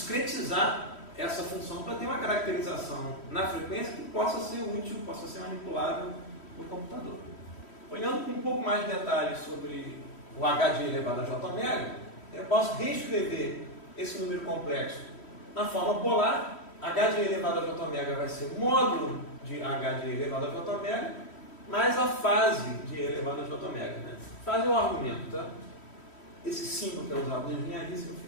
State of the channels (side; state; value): right; late; 3.1 ms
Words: essa função para ter uma caracterização na frequência que possa ser útil, possa ser manipulável por computador. Olhando com um pouco mais de detalhes sobre o h de elevado a j omega, eu posso reescrever esse número complexo na forma polar. H de elevado a j omega vai ser módulo de h de elevado a j omega mais a fase de elevado a j omega. Né? Fase é o argumento, tá? Esse símbolo que é usado na engenharia